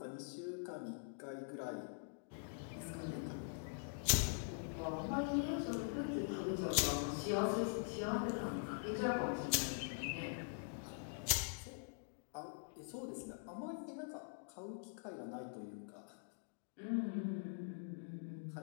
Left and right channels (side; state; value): right; silent; digital silence